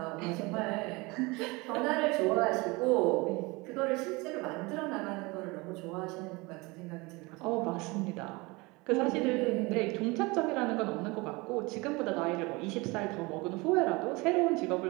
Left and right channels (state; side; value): quieter; left; 24.8 dB